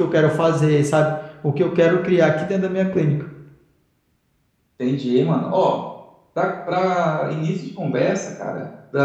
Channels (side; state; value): both; identical; correlation 1.00